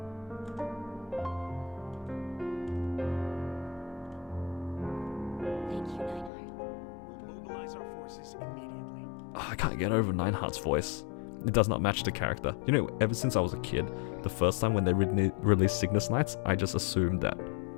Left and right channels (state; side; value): drops out; right; at 6.3 s